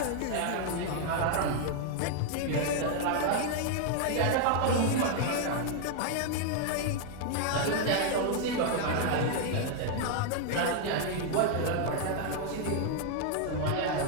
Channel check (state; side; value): different; both; correlation 0.00